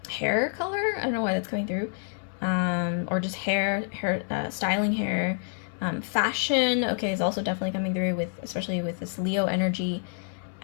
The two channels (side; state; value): right; silent; 60 dB below the other